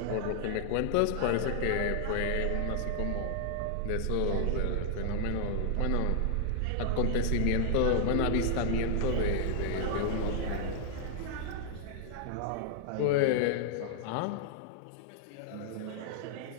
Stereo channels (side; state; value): both; different; correlation 0.00